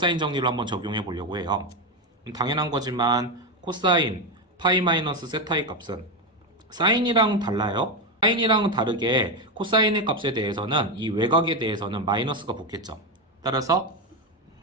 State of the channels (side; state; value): both; normal; correlation 0.11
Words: 정리를 한번 적용해 보려고 해요. 당연한 거지만 코사인 파이 마이너스 세타의 값은 사인이랑 달라요. 사인이랑은 다르게 코사인의 값에 대해서는 이 외곽에 대해서는 마이너스가 붙겠죠. 따라서